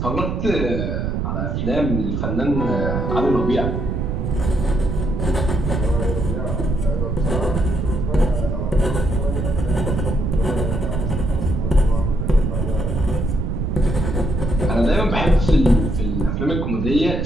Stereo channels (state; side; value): noise; right; rumble, 1 dB below the sound